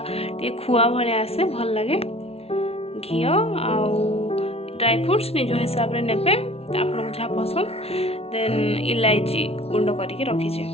टे खुआ भाया आसे भल लगे घी आउ ड्राई फ्रूट्स निज हिसाब से नेबे आपको जहाँ पसंद देन इलायची गुंड करके रखीचे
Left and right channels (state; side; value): late; right; 0.30 ms